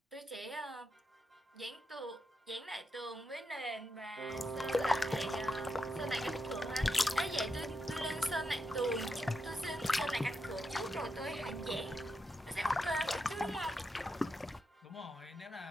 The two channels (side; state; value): both; normal; correlation 0.85